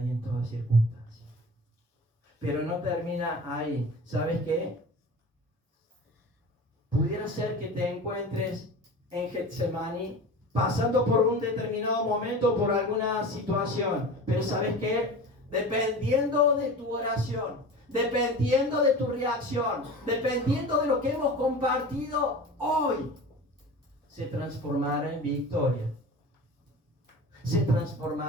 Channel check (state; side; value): normal; both; correlation 0.35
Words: en todas circunstancias. Pero no termina ahí. ¿Sabes qué? Pudiera ser que te encuentres en Getsemaní pasando por un determinado momento, por alguna situación. Pero ¿sabes qué? Dependiendo de tu oración, dependiendo de tu reacción, dependiendo de lo que hemos compartido hoy, se transformará en victoria. Se